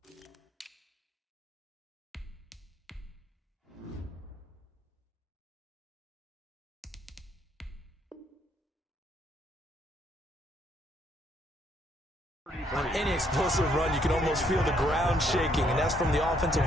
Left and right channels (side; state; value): both; normal; correlation 0.70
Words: On any explosive run, you can almost feel the ground shaking, and that's from the